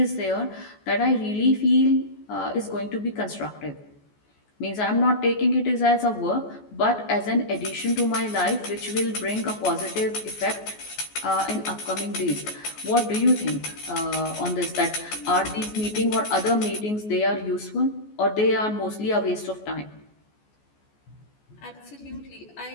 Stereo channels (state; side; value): late; right; 14 ms